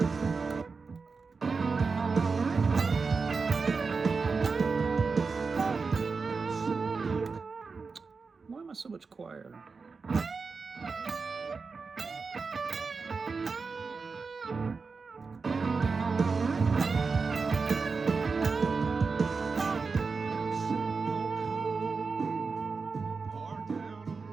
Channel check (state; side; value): quieter; left; 4.7 dB